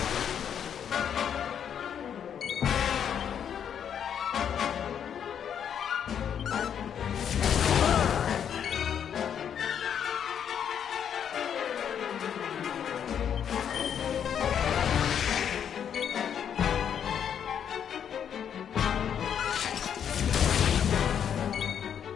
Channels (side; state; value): right; quieter; 8.5 dB